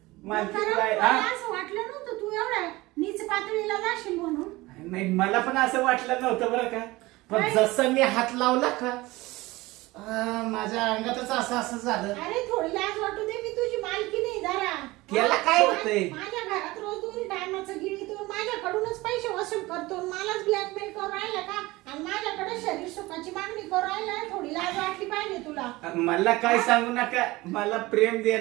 मालकीन कारण बाई मला हा असं वाटलं नव्हतं तू एवढ्या नीच पातळीला जाशील म्हणून. नाही मला पण असं वाटलं नव्हतं बरं का. पण काय? जसं मी हात लावला का माझ्या अंगातच असं झालं. अरे थोडी लाज वाटू दे मी तुझी मालकी नाही जरा. त्याला काय होतंय? माझ्या घरात रोज 2 टायमाचं गिळीतो माझ्याकडूनच पैसे वसूल करतो मलाच ब्लॅकमेल करून राहिला का? आणि माझ्याकडे शरीर सुखाची मागणी करू राहिला, थोडी लाज वाटली पाहिजे तुला. मला काय सांगू नका, मला प्रेम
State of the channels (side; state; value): left; quieter; 20.3 dB